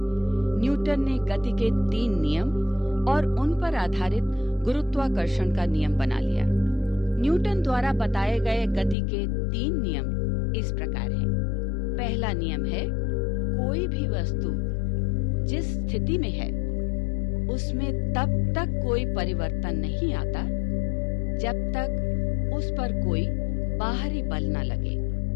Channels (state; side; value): drops out; right; at 9.0 s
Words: न्यूटन ने गति के 3 नियम और उन पर आधारित गुरुत्वाकर्षण का नियम बना लिया। न्यूटन द्वारा बताए गए गति के 3 नियम इस प्रकार हैं। पहला नियम है, कोई भी वस्तु जिस स्थिति में है उसमें तब तक कोई परिवर्तन नहीं आता जब तक उस पर कोई बाहरी बल न लगे।